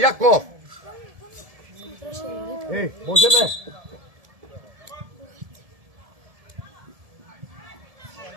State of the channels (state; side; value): late; left; 1.7 ms